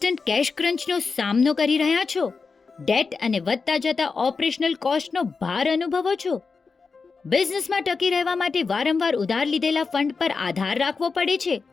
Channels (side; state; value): right; quieter; 4.7 dB